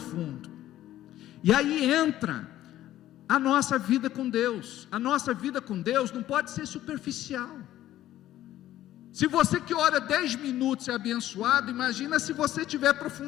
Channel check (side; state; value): right; quieter; 13.5 dB